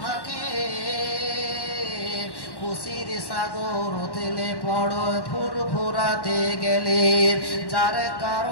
থাকে, খুশির সাগর উথলে পড়ো ফুরফুরাতে গেলে। যার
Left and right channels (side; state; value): right; late; 1.1 ms